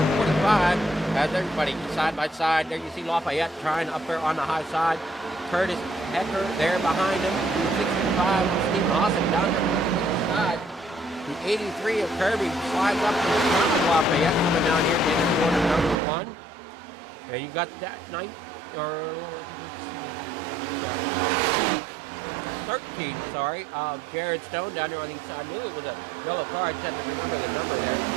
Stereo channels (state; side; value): drops out; left; at 16.0 s